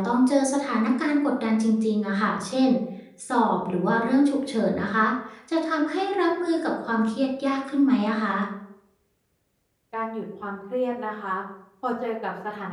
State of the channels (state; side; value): identical; both; correlation 1.00